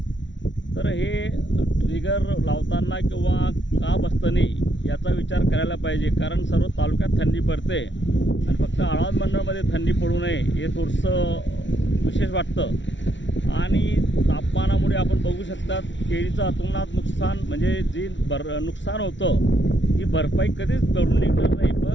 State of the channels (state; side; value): late; right; 0.54 ms